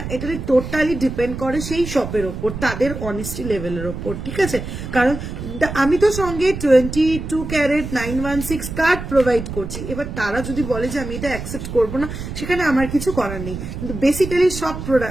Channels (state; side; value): noise; right; rumble, 7 dB below the sound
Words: এটা টোটালি ডিপেন্ড করে সেই শপের ওপর, তাদের অনেস্টি লেভেলের ওপর, ঠিক আছে? কারণ আমি তো সঙ্গে 22 ক্যারেট 916 কার্ড প্রোভাইড করছি, এবার তারা যদি বলে যে আমি এটা অ্যাকসেপ্ট করবো না, সেখানে আমার কিছু করার নেই, কিন্তু বেসিক্যালি সব